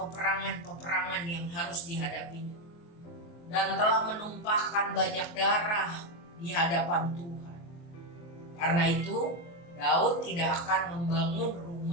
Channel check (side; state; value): right; late; 23 ms